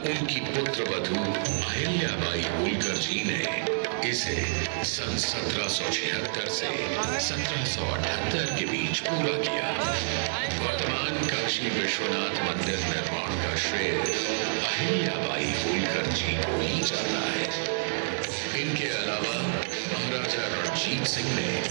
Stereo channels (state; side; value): silent; left; 59 dB below the other